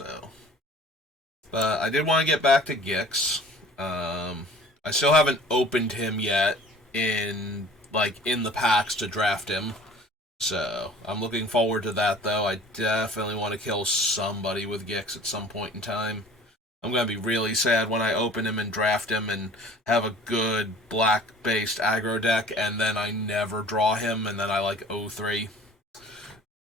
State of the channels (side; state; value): both; normal; correlation 0.47